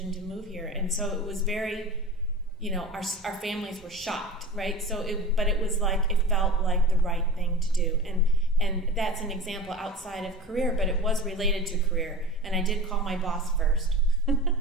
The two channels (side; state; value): both; normal; correlation 0.32